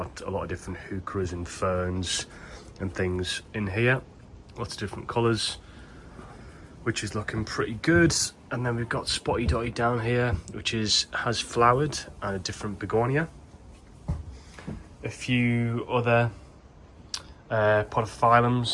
a lot of different heucheras and ferns and things in here, lots of different colours, which is looking pretty good. And then we've got Spotty Dotty down here, which has flowered, and a different begonia. A few other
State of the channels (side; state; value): both; identical; correlation 1.00